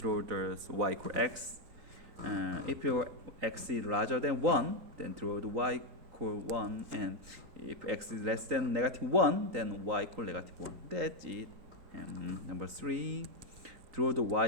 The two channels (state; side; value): late; left; 3.9 ms